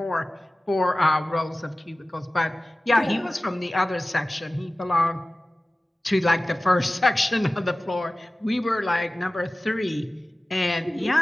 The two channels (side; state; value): both; normal; correlation 0.97